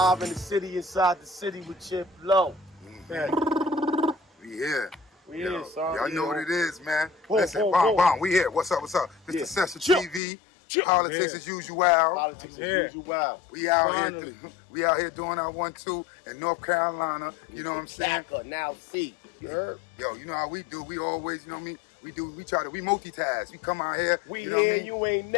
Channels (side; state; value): right; drops out; at 10.2 s